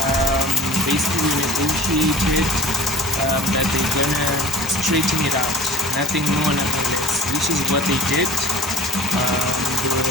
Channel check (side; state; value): both; normal; correlation 0.44